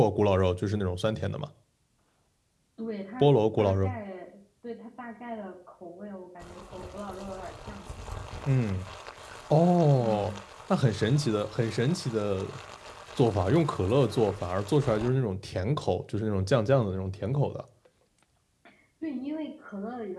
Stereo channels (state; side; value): identical; both; correlation 1.00